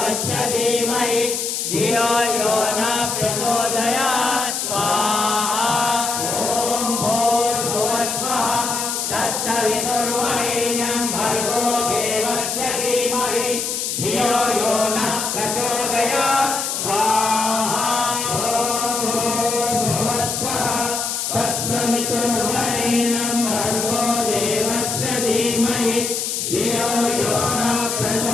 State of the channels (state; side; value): noise; left; hiss, 2 dB below the sound